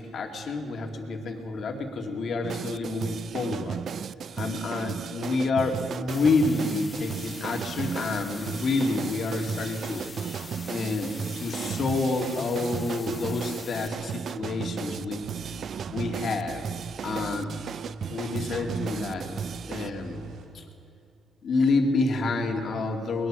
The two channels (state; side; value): normal; both; correlation 0.77